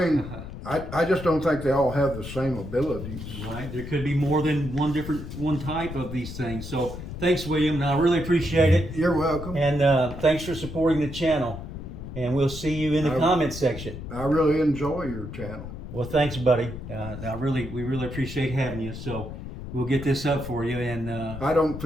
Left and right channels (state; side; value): noise; left; rumble, 9 dB below the sound